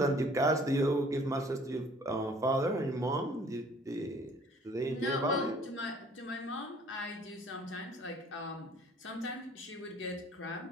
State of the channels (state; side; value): normal; both; correlation 0.55